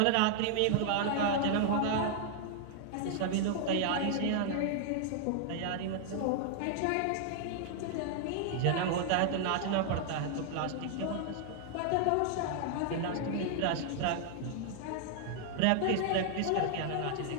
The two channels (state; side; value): different; both; correlation -0.01